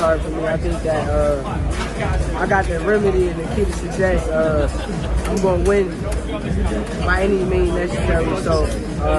for me. I think that I got the remedy and the key to success. I'm going to win by any means necessary. So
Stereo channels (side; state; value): both; identical; correlation 1.00